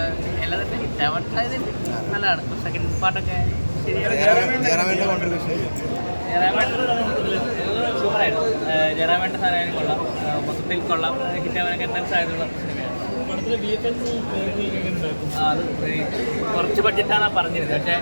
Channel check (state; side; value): inverted; both; correlation -1.00